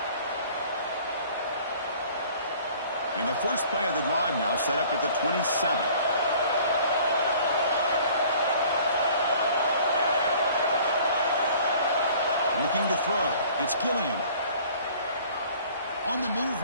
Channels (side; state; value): both; inverted; correlation -0.51